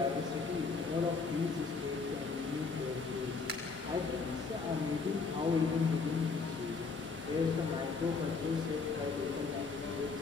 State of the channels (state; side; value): quieter; right; 4.6 dB